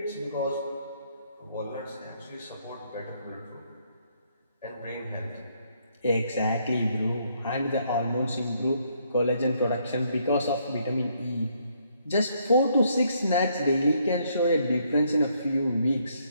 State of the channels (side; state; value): both; inverted; correlation -0.71